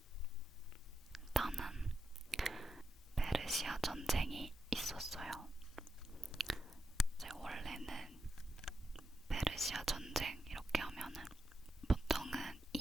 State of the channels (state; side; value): normal; both; correlation 0.87